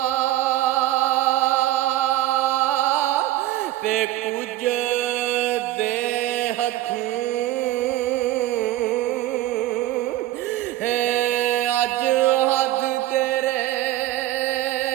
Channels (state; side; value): quieter; left; 14.8 dB